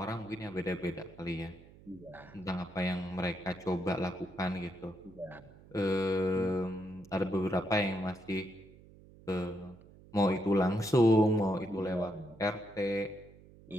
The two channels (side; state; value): right; noise; hum, 22 dB below the sound